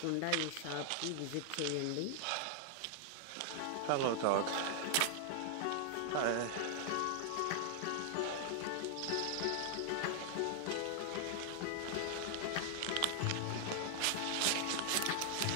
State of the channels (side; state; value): both; different; correlation 0.00